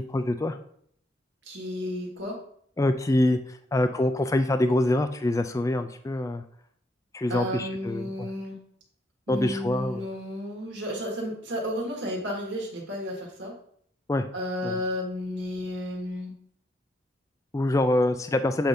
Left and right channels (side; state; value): both; normal; correlation 0.76